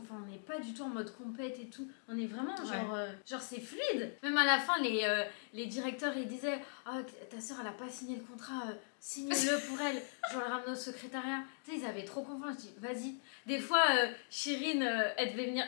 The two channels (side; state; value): right; silent; digital silence